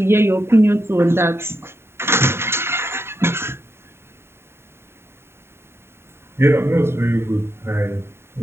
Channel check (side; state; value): left; late; 0.12 ms